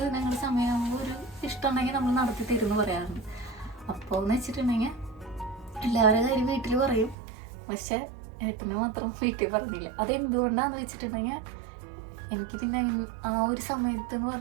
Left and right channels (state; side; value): drops out; left; at 7.2 s